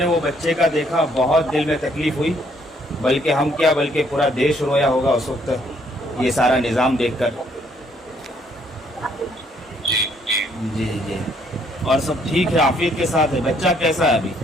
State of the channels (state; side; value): normal; both; correlation 0.67